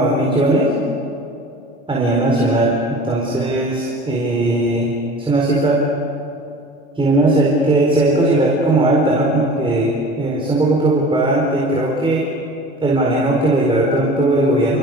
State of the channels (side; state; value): both; normal; correlation 0.41